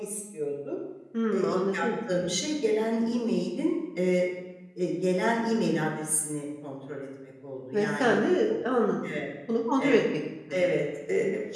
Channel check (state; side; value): identical; both; correlation 1.00